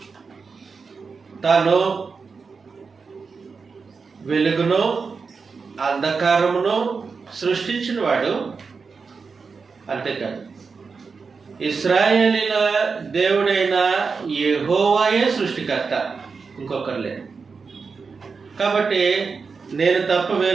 తాను వెలుగును అంధకారమును సృష్టించిన వాడు. అంతేకాదు, ఇశ్రాయేలీల దేవుడైన యెహోవాయే సృష్టికర్త, ఇంకొకరు లేడు. కాబట్టి నేను తప్ప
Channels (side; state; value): left; quieter; 5.0 dB